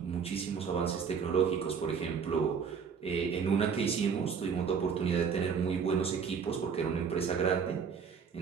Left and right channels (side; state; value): left; quieter; 6.4 dB